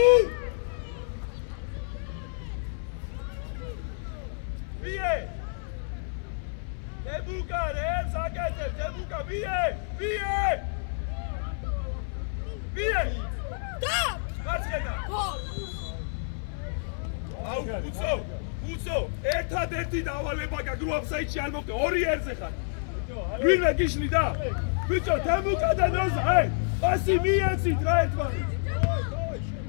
ვიე! დებუკა რებს აკეთე, დებუკა ვიე! და! გაჩენა. აუ, უცო, ერთადერთი დავალება გაქვს რო აფსაიდში არ მოკე, 2 ერზე ხარ. ვინმე გიშლი და? ბიჭო, თემუკა და ნოზა, პასი მიეცით რა ერთმანეთს.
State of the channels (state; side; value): silent; right; 56 dB below the other